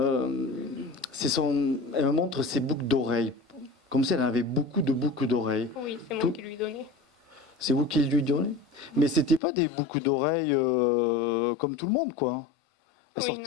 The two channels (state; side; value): drops out; right; at 9.4 s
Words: me montre ses boucles d'oreilles. Comme si elle avait beaucoup de boucles d'oreilles. Oui, c'est moi qui lui donnais. C'est vous qui lui donnez? Mais c'était pas des boucles d'oreilles comme tout le monde, quoi.